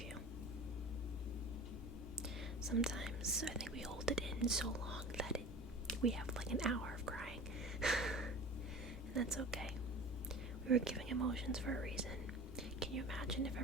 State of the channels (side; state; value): both; normal; correlation 0.38